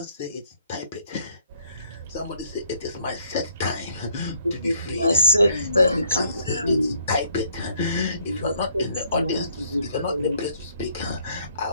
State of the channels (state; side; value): inverted; both; correlation -0.65